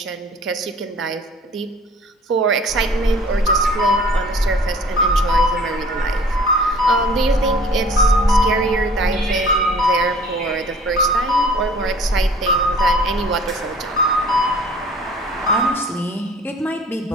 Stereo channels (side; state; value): both; normal; correlation 0.49